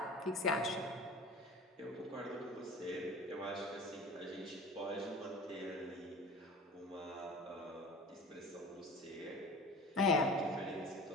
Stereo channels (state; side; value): normal; both; correlation 0.38